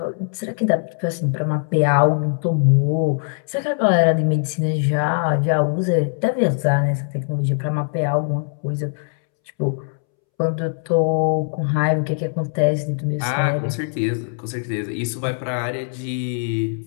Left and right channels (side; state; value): right; silent; 65 dB below the other